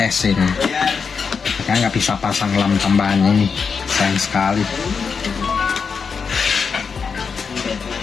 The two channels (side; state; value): right; quieter; 5.7 dB